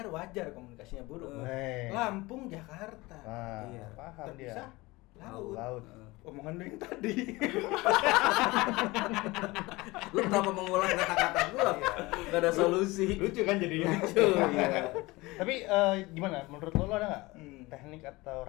wajar komunikasinya buruk. Lampung, Jakarta. Nah, Iya. paham dia. Terpisah laut. Laut. Omongan lu yang tadi. Lu kenapa mengulang kata-kata gua? Gak ada solusi. Lucu kan jadinya. Lucu, iya. Tapi gimana? Menurut lo ada nggak teknik atau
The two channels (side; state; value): right; quieter; 21.7 dB